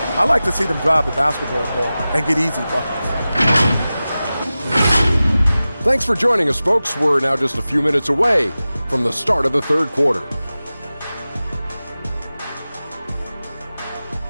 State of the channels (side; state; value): both; inverted; correlation -0.96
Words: I like to see them drive the basketball more and get easy buckets. Thanks for joining us, folks. We're now just a few minutes away from the start of the third quarter.